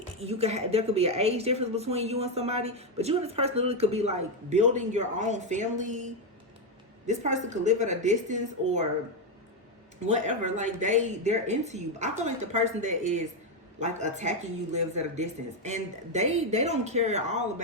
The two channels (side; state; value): both; normal; correlation 0.05